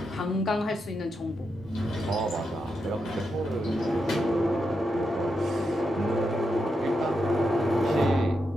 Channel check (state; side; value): normal; both; correlation 0.85